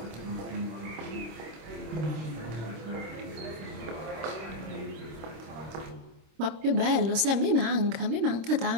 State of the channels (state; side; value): late; left; 26 ms